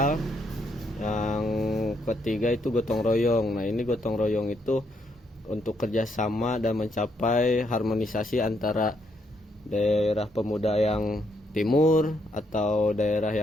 Yang ketiga itu gotong royong. Nah, ini gotong royong itu untuk kerjasama dan mencapai harmonisasi antara daerah pemuda yang timur atau daerah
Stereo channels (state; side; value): normal; both; correlation 0.75